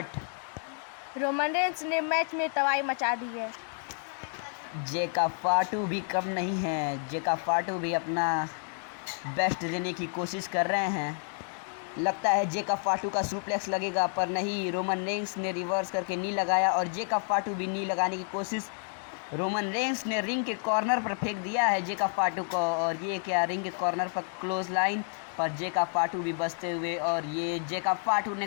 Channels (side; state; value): right; silent; 58 dB below the other